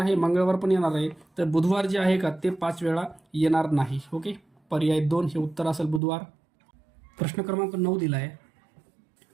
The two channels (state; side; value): drops out; left; at 6.0 s